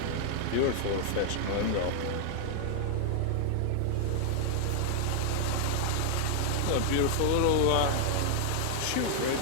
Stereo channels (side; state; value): both; different; correlation 0.00